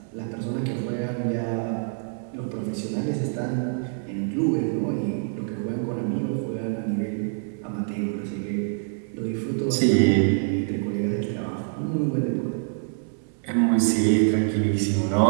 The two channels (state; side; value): silent; left; 61 dB below the other